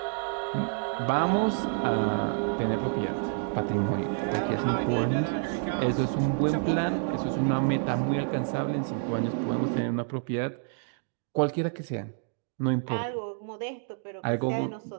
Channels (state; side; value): silent; left; 59 dB below the other